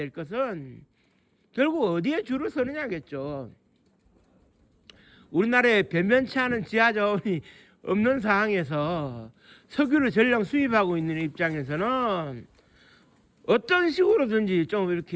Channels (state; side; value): identical; both; correlation 1.00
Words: 것은 결국 어디에 줄을 서느냐겠죠. 우리나라에 변변치 않은 지하 자원이 없는 상황에서 석유를 전량 수입하고 있는 입장에서는 어떤 식으로든지 좀